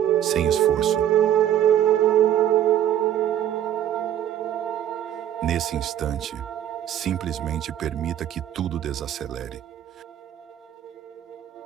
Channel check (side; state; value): left; quieter; 11.0 dB